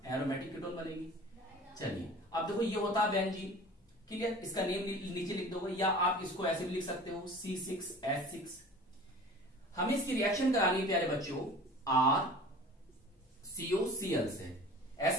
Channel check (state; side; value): normal; both; correlation 0.42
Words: कीटोन बनेगी। चलिए अब देखो, ये होता है बेंजीन। क्लियर? इसका नेम नीचे लिख दोगे या आप इसको ऐसे भी लिख सकते हो, C6H6। हमें इसकी रिएक्शन करानी है प्यारे बच्चों RCOCl से,